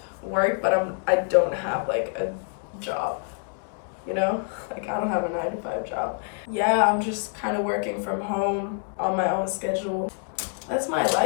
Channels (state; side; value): silent; right; 55 dB below the other